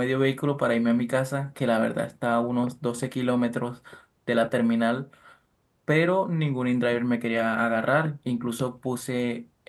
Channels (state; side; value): identical; both; correlation 1.00